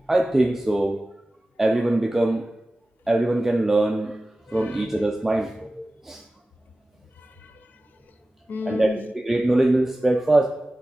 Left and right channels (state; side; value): normal; both; correlation 0.96